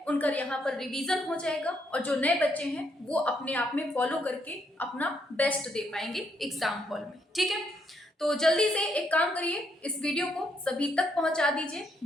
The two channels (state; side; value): normal; both; correlation 0.75